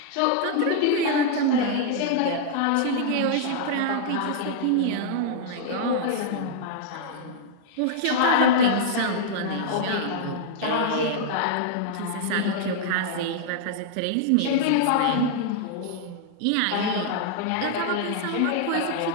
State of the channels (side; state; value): both; different; correlation -0.01